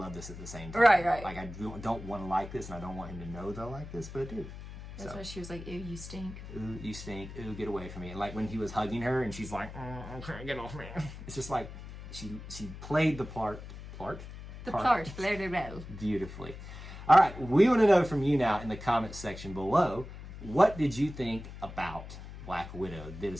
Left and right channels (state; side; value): noise; left; hum, 12 dB below the sound